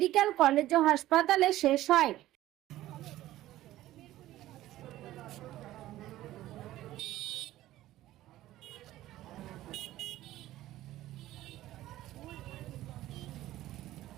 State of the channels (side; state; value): left; quieter; 14.9 dB